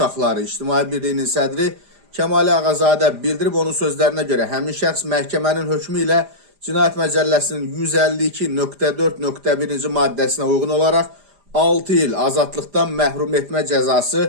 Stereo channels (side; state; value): left; late; 5.0 ms